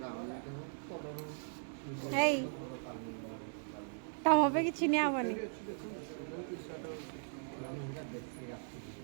हे तम पे किसी नहीं आवनी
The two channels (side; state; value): left; silent; digital silence